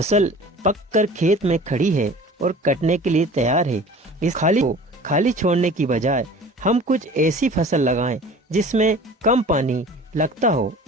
पककर खेत में खड़ी है और कटने के लिए तैयार है। इस खाली छोड़ने की बजाय हम कुछ ऐसी फसल लगाएं जिसमें कम पानी लगता हो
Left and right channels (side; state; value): both; normal; correlation 0.43